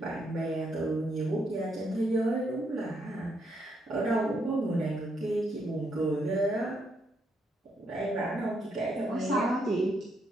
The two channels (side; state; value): both; normal; correlation 0.76